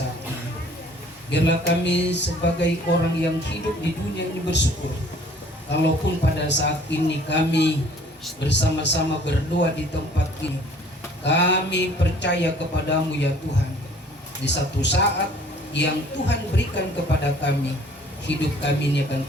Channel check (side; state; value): both; normal; correlation 0.54